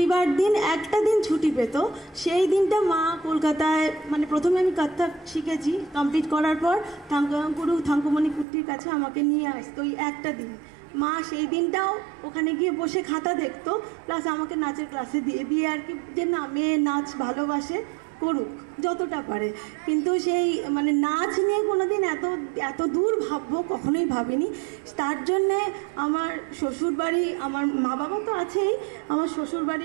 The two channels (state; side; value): drops out; left; at 8.5 s